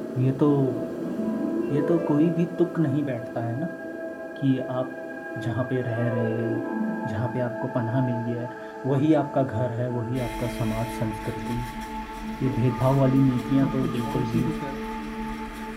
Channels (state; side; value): identical; both; correlation 1.00